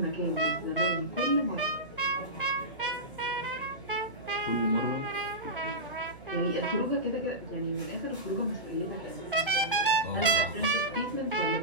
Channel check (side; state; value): right; noise; hum, 20 dB below the sound